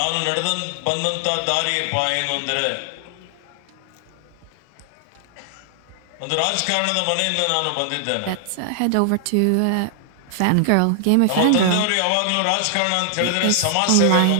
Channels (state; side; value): different; both; correlation 0.00